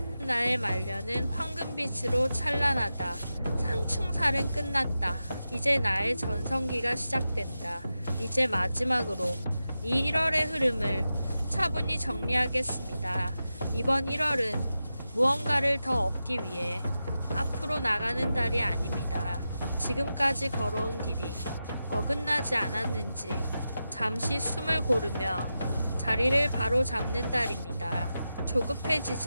나의 말년은 황금빛으로 찬란하다. 상충살은 끝났다. 이제 나의 전성기가 시작된다. 이제 마지막으로 이 1월의 흐름을 차분히 정리하겠습니다. 이번 1월은 무언가를 더 얻기 위해 앞으로 나가는 달이 아닙니다. 지금까지 걸어온 길이 어긋나지 않았는지 잠시 숨을 고르며 자리를 바로 잡는 달입니다.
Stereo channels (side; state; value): both; inverted; correlation -0.91